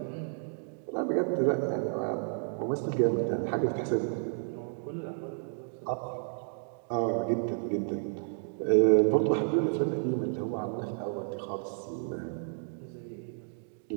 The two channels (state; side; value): silent; left; digital silence